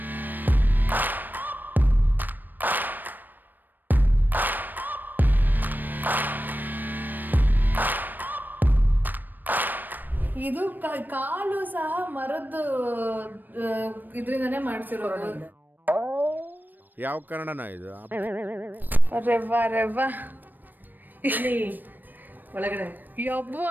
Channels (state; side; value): late; left; 0.090 ms